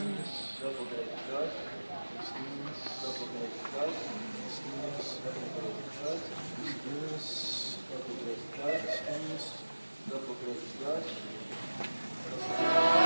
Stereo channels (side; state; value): both; inverted; correlation -1.00